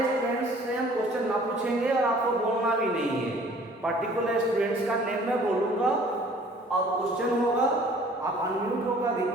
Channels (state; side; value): normal; both; correlation 0.53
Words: स्टूडेंट्स से हम क्वेश्चन ना पूछेंगे और आपको बोलना भी नहीं है. पर्टिकुलर स्टूडेंट्स का नेम मैं बोलूंगा और क्वेश्चन होगा, आप अनम्यूट होकर